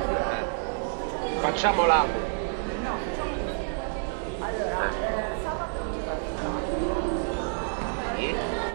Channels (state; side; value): silent; left; digital silence